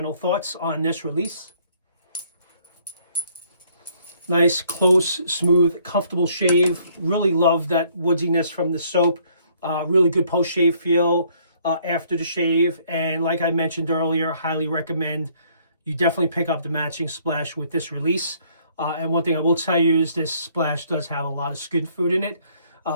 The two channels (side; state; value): both; inverted; correlation -0.64